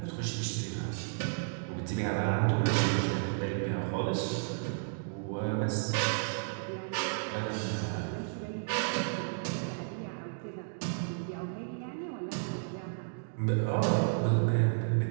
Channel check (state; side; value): silent; left; digital silence